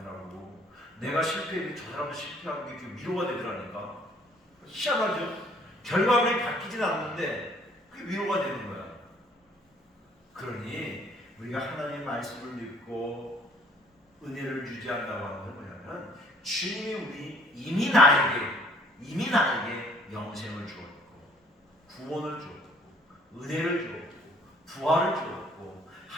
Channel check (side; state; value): both; normal; correlation 0.58